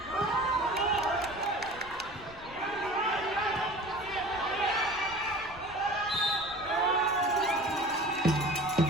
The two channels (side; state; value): left; noise; rumble, 19 dB below the sound